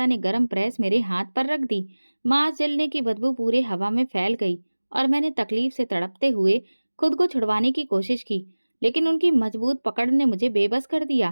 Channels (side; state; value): both; inverted; correlation -1.00